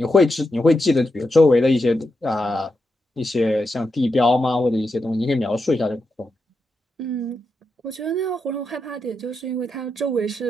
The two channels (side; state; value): both; normal; correlation 0.86